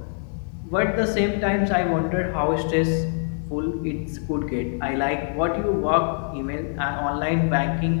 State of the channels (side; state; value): right; silent; digital silence